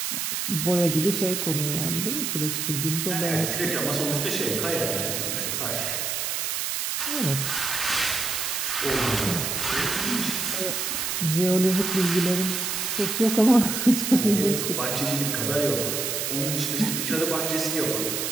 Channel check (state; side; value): noise; right; hiss, 1 dB below the sound